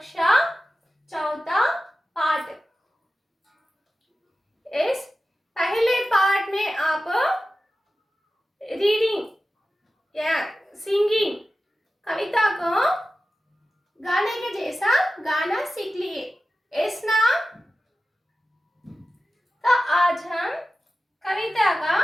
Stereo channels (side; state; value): both; normal; correlation 0.94